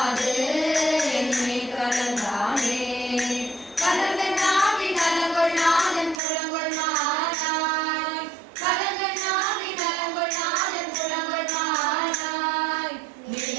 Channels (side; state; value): left; drops out; at 6.2 s